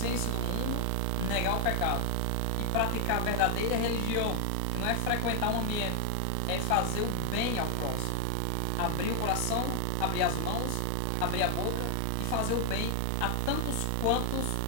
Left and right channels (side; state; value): both; different; correlation 0.00